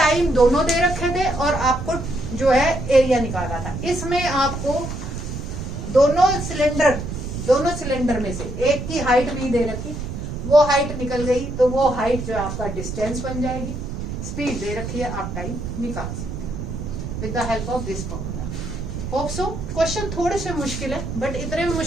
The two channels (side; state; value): right; noise; rumble, 6 dB below the sound